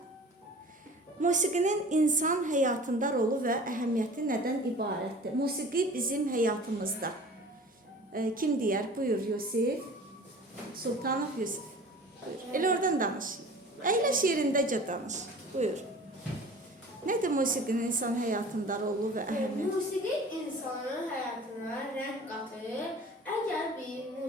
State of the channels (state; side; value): normal; both; correlation 0.43